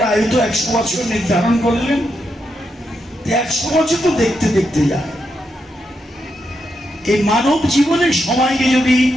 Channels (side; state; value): both; normal; correlation 0.83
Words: আয়ু তো 100 বছর নির্ধারণ করলেন, 100 বছর তো দেখতে দেখতে যায়। এই মানব জীবনের সময়কে যদি